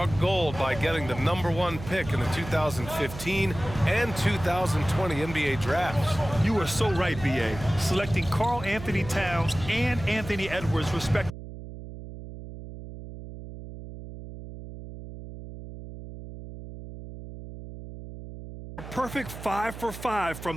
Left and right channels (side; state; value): right; noise; hum, 12 dB below the sound